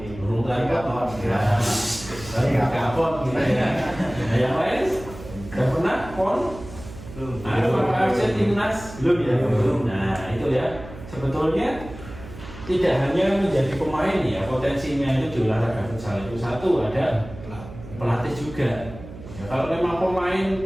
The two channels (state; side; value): noise; right; hum, 15 dB below the sound